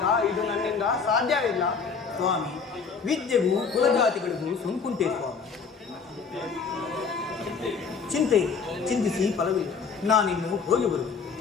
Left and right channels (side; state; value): right; quieter; 5.5 dB